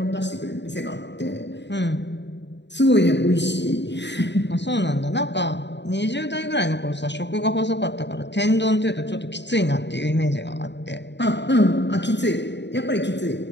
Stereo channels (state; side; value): late; right; 0.51 ms